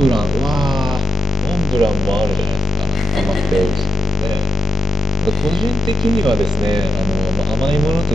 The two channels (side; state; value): both; normal; correlation 0.87